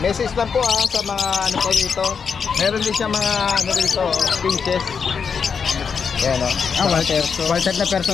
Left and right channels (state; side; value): quieter; right; 6.1 dB